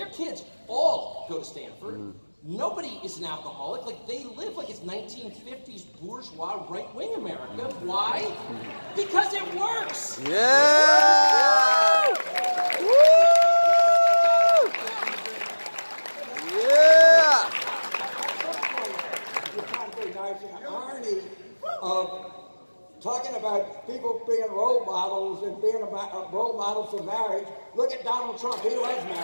kids all go to Stanford. Nobody is an alcoholic. Like, they live like it's 1950s bourgeois right-wing America. Why? Because it works. Yeah! Woo! Yeah! You're trying to be nice, and the irony of talking about people being role models and being role models for marriage. Look at Donald Trump. He loves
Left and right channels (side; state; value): both; inverted; correlation -1.00